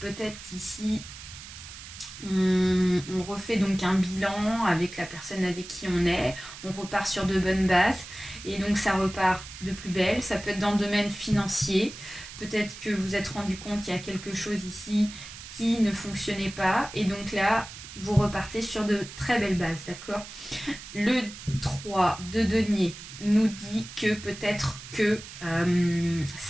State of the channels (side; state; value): right; noise; hiss, 14 dB below the sound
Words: qu'ici on refait donc un bilan avec la personne avec qui on est, on repart sur de bonnes bases et donc ça repart de plus belle. Ça peut être dans le domaine financier, peut-être que vous vous êtes rendu compte qu'il y a quelque chose ici qui ne fonctionnait pas et donc là vous repartez sur de très belles bases, d'accord. Le 3 de denier nous dit que peut-être que